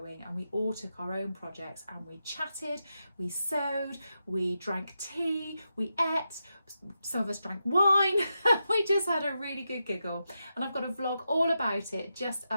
and we all took our own projects and we chatted, we sewed, we drank tea, we ate, some of us drank wine. We just had a really good giggle, and I've got a vlog all about it just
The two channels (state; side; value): inverted; both; correlation -0.87